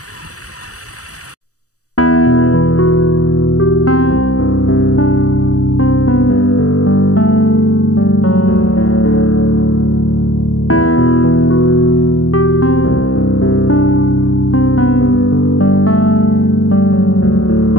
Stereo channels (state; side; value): late; right; 0.66 ms